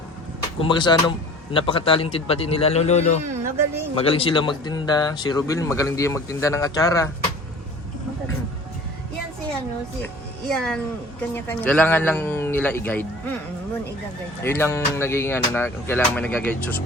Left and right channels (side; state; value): both; normal; correlation 0.44